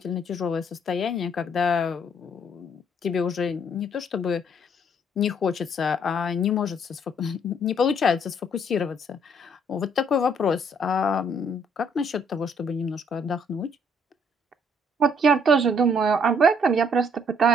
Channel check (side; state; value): both; normal; correlation 0.65